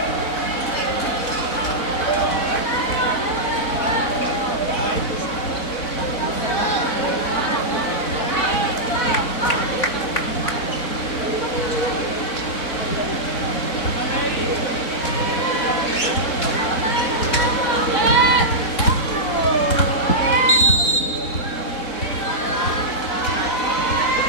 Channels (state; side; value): late; right; 4.0 ms